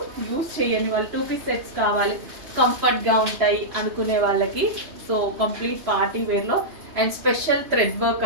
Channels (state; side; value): late; left; 3.0 ms